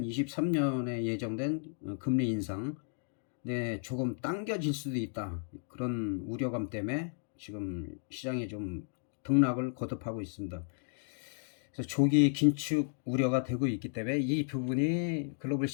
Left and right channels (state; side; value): silent; right; digital silence